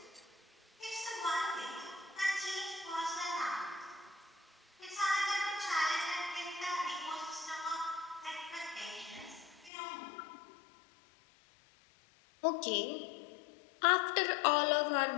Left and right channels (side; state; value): right; drops out; at 9.7 s